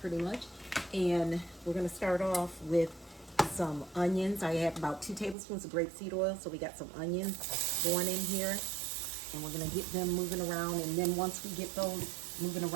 pretty much. And we're going to start off with some onions. I have about 2 tablespoons of grapeseed oil. So we got some onions going in here. And we're going to get them moving around, and then once we get those moving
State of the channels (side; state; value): left; drops out; at 5.4 s